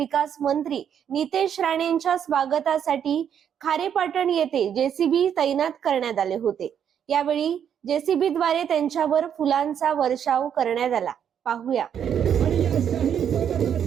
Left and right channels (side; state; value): left; quieter; 8.7 dB